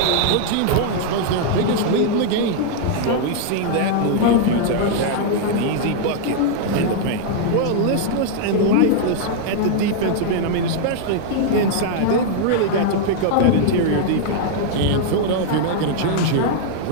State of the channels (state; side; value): different; both; correlation -0.01